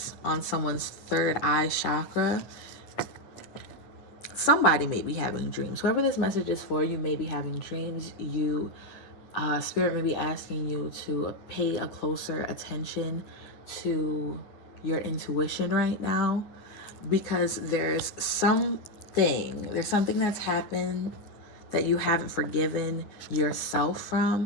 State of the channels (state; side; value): late; right; 9.5 ms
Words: on someone's third eye chakra. Somebody may be having dreams. Whoever this message is for, you may be having dreams. Spirit may be asking you to pay a closer attention to your intuition right now, because there's something that's happened that you haven't forgiven yourself